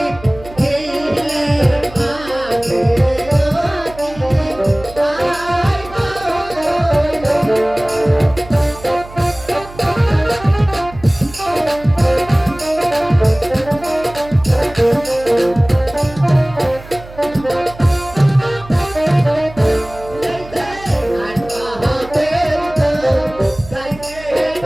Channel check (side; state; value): right; noise; hum, 18 dB below the sound